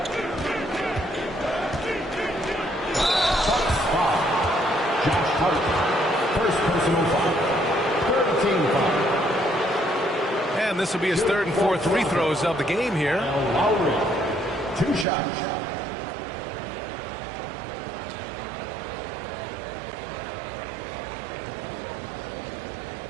First personal foul. 13 foul. And this will be his third and fourth free throws of the game here. Lowry, 2 shots.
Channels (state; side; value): drops out; left; at 15.1 s